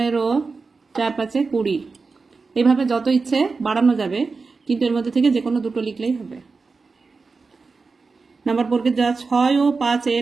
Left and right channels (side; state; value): left; quieter; 4.4 dB